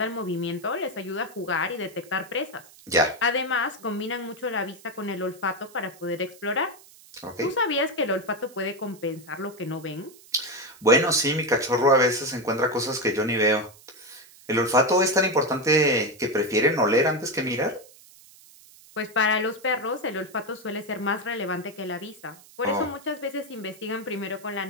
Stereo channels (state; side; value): noise; right; hiss, 23 dB below the sound